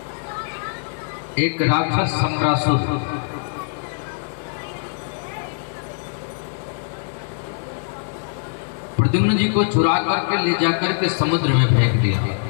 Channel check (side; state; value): right; silent; digital silence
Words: एक राक्षस सम्रासुर प्रद्युम्न जी को चुरा करके ले जाकर के समुद्र में फेंक दिया।